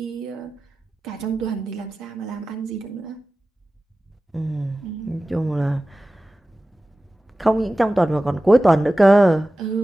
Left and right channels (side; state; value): both; normal; correlation 0.95